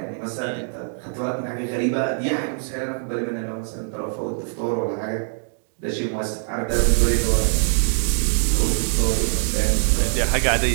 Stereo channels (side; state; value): left; silent; digital silence